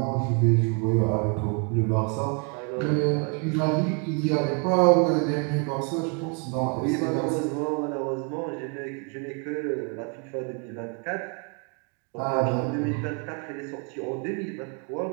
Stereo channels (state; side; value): quieter; left; 35.2 dB